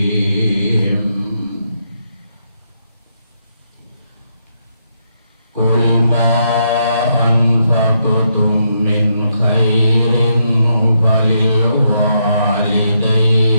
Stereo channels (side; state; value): both; inverted; correlation -0.79